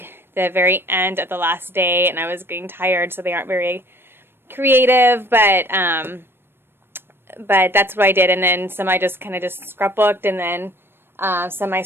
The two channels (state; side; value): late; left; 0.11 ms